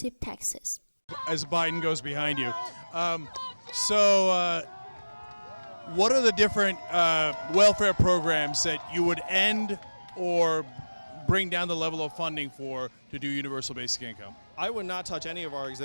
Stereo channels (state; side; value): inverted; both; correlation -1.00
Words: taxes. As Biden goes behind you. What are the different welfare programs that you would end or bring down the level of funding for to do universal basic income? I would not touch any of our